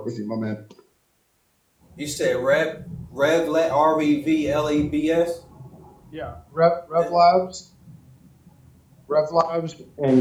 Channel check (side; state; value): both; identical; correlation 1.00